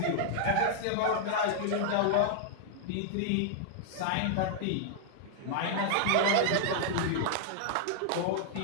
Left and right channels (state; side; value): different; both; correlation -0.01